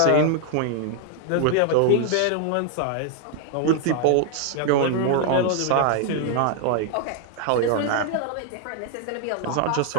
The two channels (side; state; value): both; different; correlation 0.00